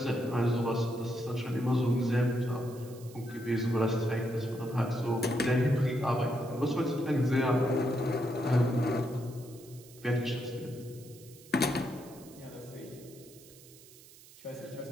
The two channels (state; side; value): noise; right; hiss, 22 dB below the sound